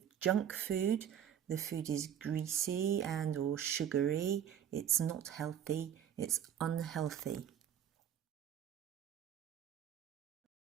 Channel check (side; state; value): left; quieter; 9.5 dB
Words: junk food. The food is greasy and or sugary. It's not healthy. It's unhealthy.